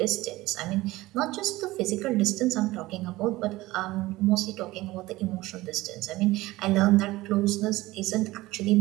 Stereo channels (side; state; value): left; quieter; 18.6 dB